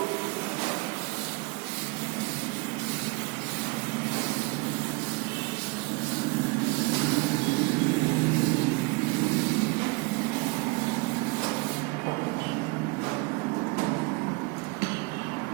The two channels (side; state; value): left; quieter; 26.5 dB